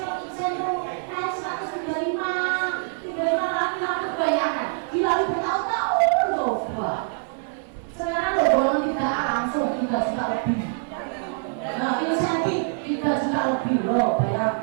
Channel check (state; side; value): silent; left; 61 dB below the other